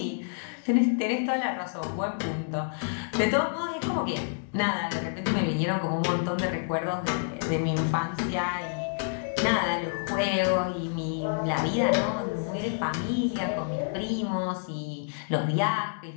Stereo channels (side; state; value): right; silent; digital silence